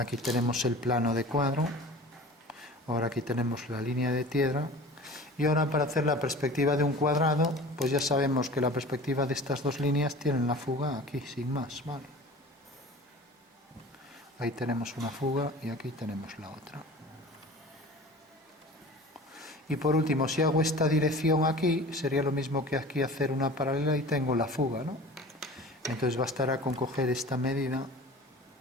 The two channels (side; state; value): both; normal; correlation 0.40